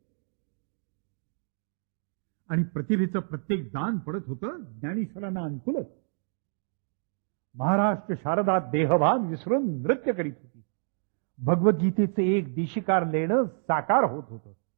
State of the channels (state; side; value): silent; left; digital silence